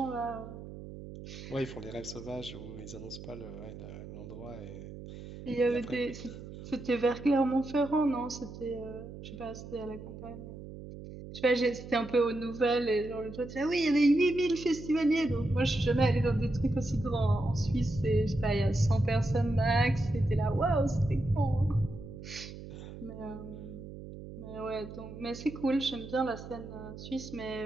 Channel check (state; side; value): noise; right; hum, 12 dB below the sound